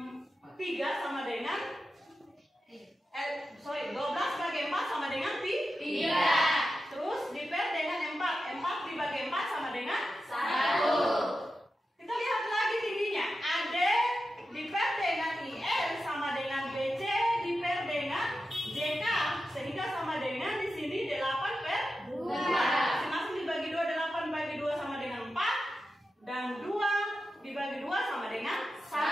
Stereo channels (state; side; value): normal; both; correlation 0.91